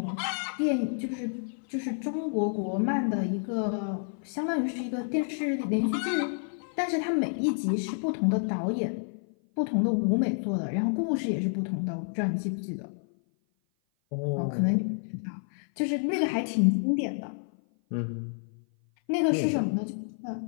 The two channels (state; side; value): silent; right; 56 dB below the other